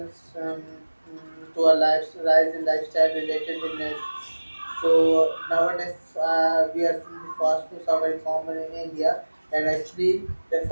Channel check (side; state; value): both; inverted; correlation -1.00